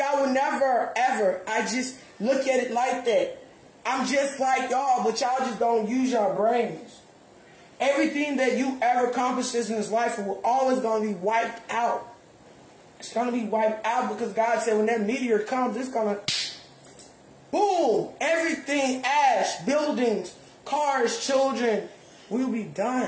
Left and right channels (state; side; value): identical; both; correlation 1.00